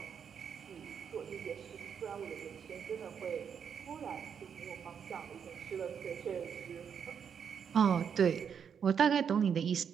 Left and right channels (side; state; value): left; quieter; 7.4 dB